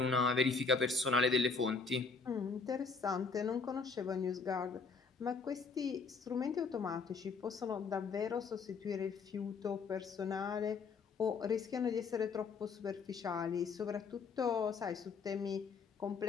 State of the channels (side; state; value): right; quieter; 4.9 dB